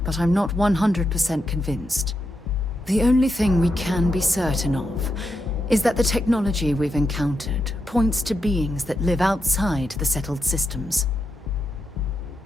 but I'm not 100% convinced. The only thing we can be certain of is that the technology we've encountered points to beings that live outside the settled systems.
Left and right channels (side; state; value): both; normal; correlation 0.85